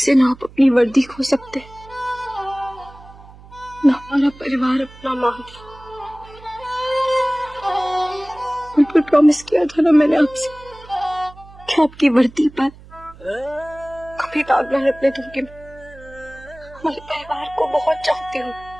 ना आप अपनी वर्दी खो सकते, ना हमारा परिवार अपना मान। बिल्कुल प्रॉमिस किया था ना मैंने आपसे कि आपकी वर्दी पर कभी दाग न लगने दूंगी। हमारे परिवार को बहुत चाहती हूँ,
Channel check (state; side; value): noise; right; hum, 21 dB below the sound